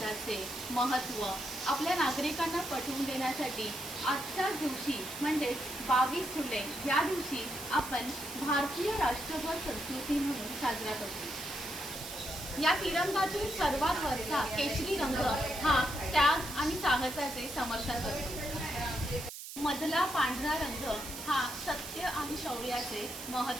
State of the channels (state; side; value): noise; right; hiss, 10 dB below the sound